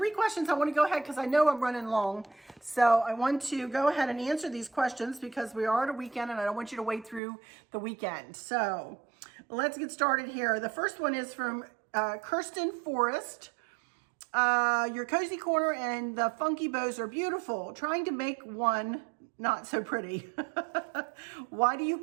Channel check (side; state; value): left; drops out; at 7.2 s